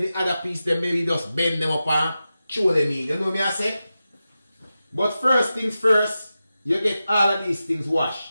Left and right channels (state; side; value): inverted; both; correlation -0.92